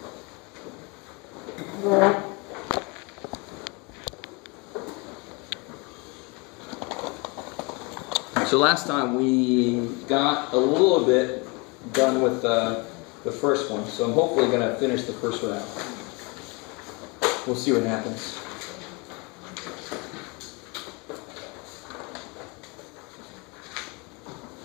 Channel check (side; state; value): right; quieter; 29.1 dB